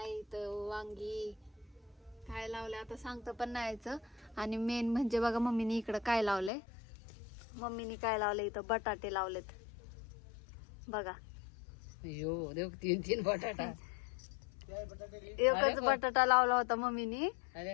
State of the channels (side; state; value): right; drops out; at 6.5 s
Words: इथं वांगी, काय लावलंय आता सांगतं पण नाही यायचं. आणि मेन म्हणजे बघा मम्मीने इकडं काय लावलंय. मम्मीने काय लावलंय इथं, बटाटे लावलेत बघा. यो देव, 3 बटाटा. एकच बटाटा लावला होता मम्मीने.